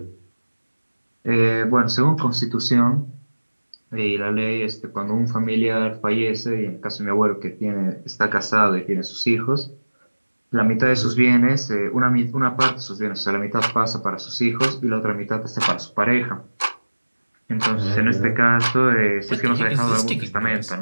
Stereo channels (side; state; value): both; inverted; correlation -1.00